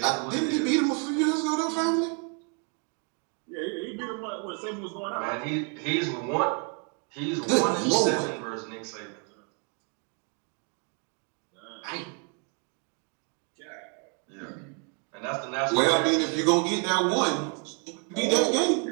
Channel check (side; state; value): left; quieter; 38.6 dB